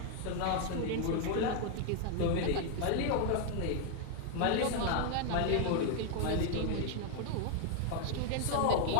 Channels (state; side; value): different; both; correlation 0.00